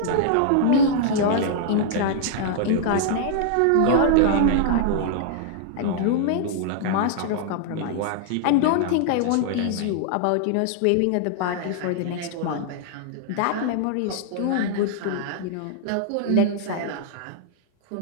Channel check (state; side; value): different; both; correlation -0.01